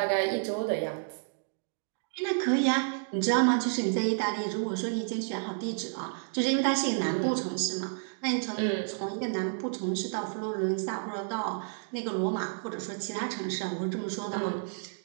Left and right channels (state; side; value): silent; left; digital silence